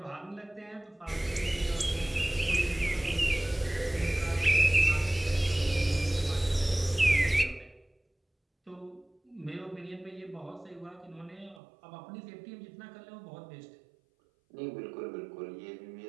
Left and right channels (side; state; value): left; drops out; at 11.6 s